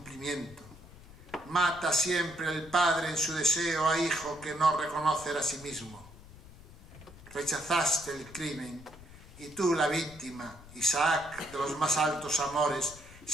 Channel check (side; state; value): left; noise; rumble, 19 dB below the sound